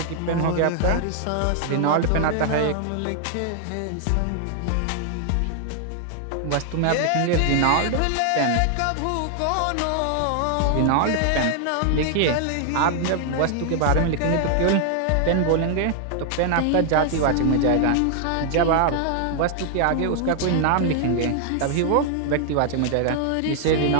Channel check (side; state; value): both; different; correlation 0.00